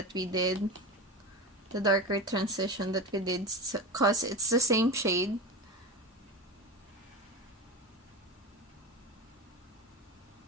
we did, the darker transition that we did, because it's the same shade.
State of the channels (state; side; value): normal; both; correlation 0.24